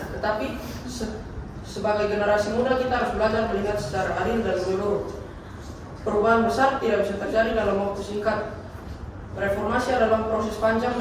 tetapi sebagai generasi muda kita harus belajar melihat secara adil dan menyeluruh. Perubahan besar tidak bisa terjadi dalam waktu singkat. Reformasi adalah proses panjang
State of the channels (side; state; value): both; identical; correlation 1.00